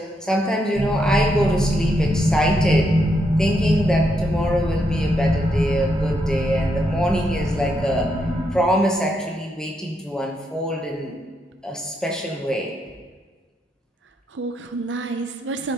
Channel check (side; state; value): both; normal; correlation 0.79